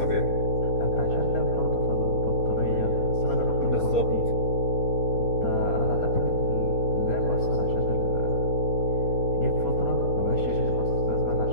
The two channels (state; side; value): late; right; 4.3 ms